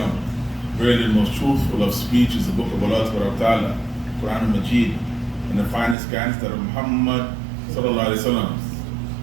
Really, the most truthful of speech is the book of Allah Ta'ala, Quran al-Majid, and the finest guidance that of Muhammad sallallahu alaihi wasallam.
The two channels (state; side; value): drops out; left; at 6.0 s